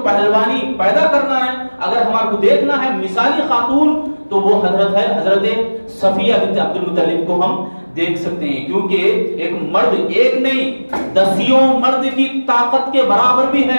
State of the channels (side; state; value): both; inverted; correlation -1.00